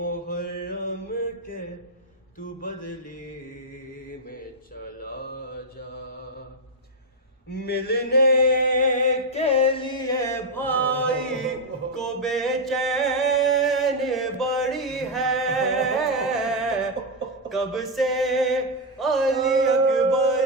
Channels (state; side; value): normal; both; correlation 0.03